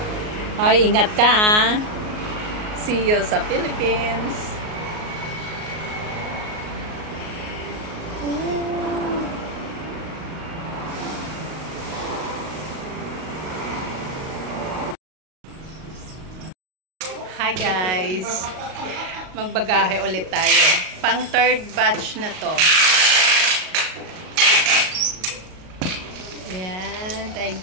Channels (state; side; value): late; left; 38 ms